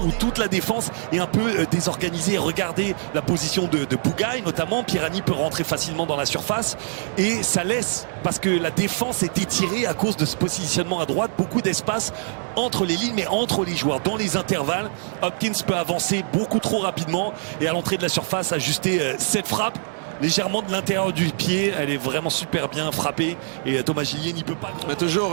toute la défense est un peu désorganisée. Regardez la position de Bougaï, notamment. Pierani peut rentrer facilement dans la surface. Et ça laisse, parce que la défense est étirée à cause de ce positionnement à droite, beaucoup d'espace entre les lignes, mais entre les joueurs, dans les intervalles. Hopkins peut avancer beaucoup trop rapidement et à l'entrée de la surface ajuster cette frappe légèrement de l'intérieur du pied. Elle est vraiment super bien frappée et Thomas Gillier n'y peut pas. On a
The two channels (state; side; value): silent; left; digital silence